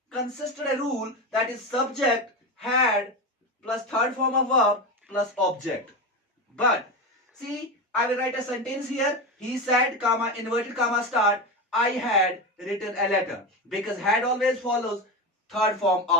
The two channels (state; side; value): normal; both; correlation 0.19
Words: consisted a rule that is subject, had, plus third form of verb, plus object. But see, I will write a sentence here. He said, comma, inverted comma start, I had written a letter. Because had always follows third form